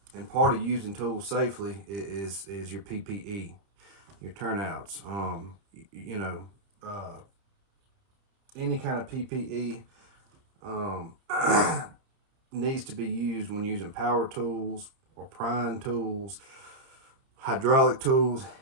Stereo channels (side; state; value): left; late; 30 ms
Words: part of using tools safely is your PPE, your turnouts. Any kind of PPE needs to be used when using power tools or prying tools, hydraulic tools,